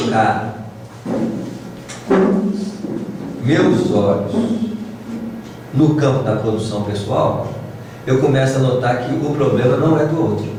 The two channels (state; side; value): identical; both; correlation 1.00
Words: meus olhos no campo da produção pessoal, eu começo a notar que o problema não é do outro.